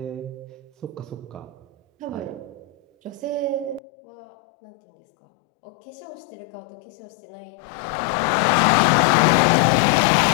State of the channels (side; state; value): right; drops out; at 3.8 s